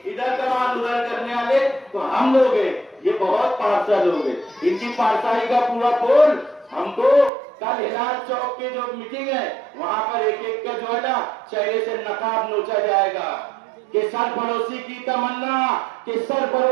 इधर का माल उधर करने वाले तो हम लोग हैं। ये बहुत पारसा लोग हैं। इनकी पारसाई का पूरा पोल हमको कल हिलाल चौक के जो मीटिंग है वहां पर एक एक का जो है ना चेहरे से नकाब नोचा जाएगा कि सरफरोशी की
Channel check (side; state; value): left; drops out; at 7.3 s